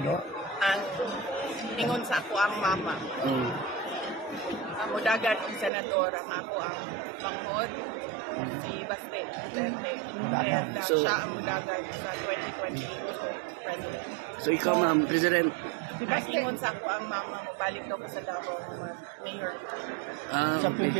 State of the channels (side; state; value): left; drops out; at 5.7 s